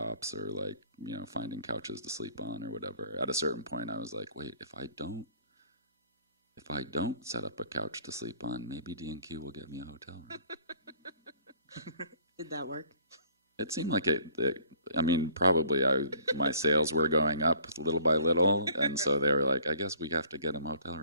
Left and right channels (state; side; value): inverted; both; correlation -0.55